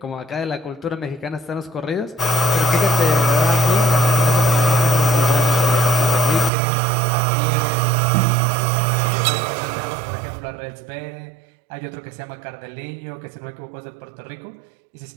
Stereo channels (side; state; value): left; drops out; at 6.5 s